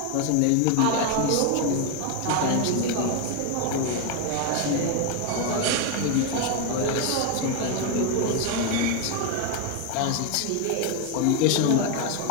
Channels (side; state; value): both; different; correlation 0.01